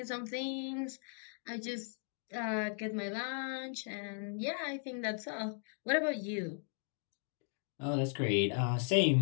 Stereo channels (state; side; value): silent; right; 53 dB below the other